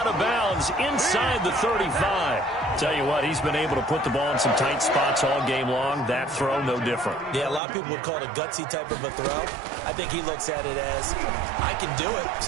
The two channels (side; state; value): left; drops out; at 7.6 s